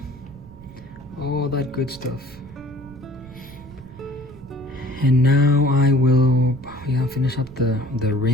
all that good stuff. And now I will finish up the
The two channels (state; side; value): noise; right; rumble, 20 dB below the sound